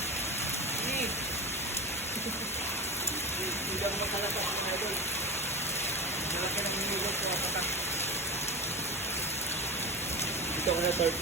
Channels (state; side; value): normal; both; correlation 0.24